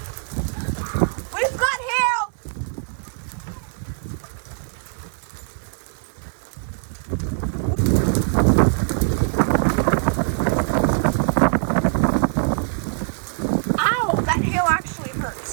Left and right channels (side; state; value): left; silent; 63 dB below the other